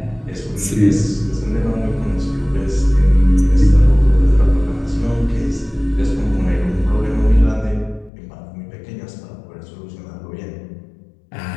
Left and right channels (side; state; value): right; drops out; at 8.1 s